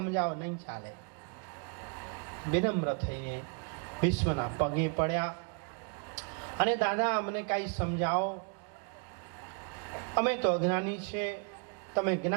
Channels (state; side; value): quieter; left; 36.6 dB